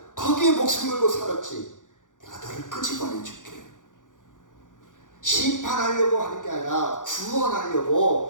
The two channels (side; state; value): right; late; 0.88 ms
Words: 거기에 목숨 걸고 살았지. 내가 너를 끄집어내줄게. 심판하려고 하는 게 아니라